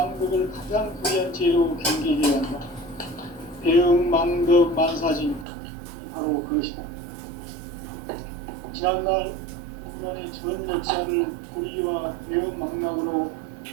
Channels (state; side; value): drops out; left; at 5.5 s